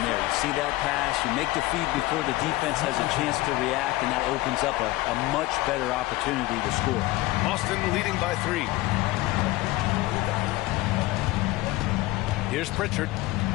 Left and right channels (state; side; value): quieter; right; 18.8 dB